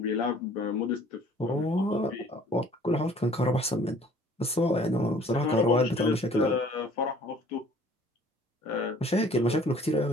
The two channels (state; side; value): normal; both; correlation 0.54